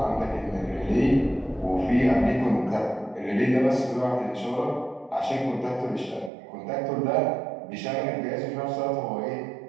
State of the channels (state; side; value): drops out; left; at 6.3 s